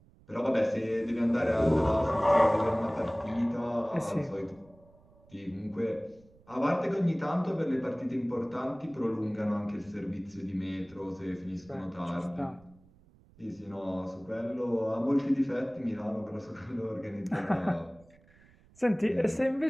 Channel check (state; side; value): noise; right; rumble, 28 dB below the sound